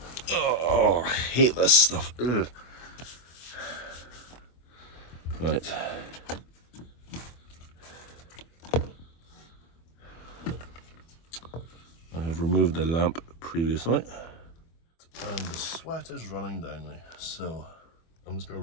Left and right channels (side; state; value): right; late; 24 ms